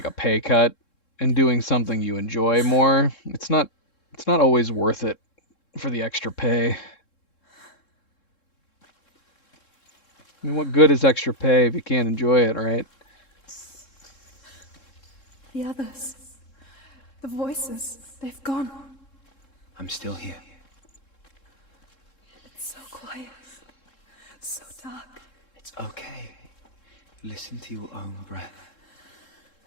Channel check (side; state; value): right; late; 3.7 ms